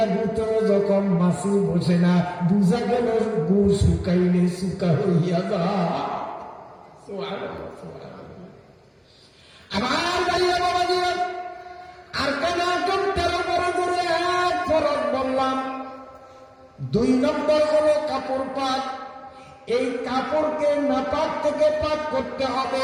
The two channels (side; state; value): both; identical; correlation 1.00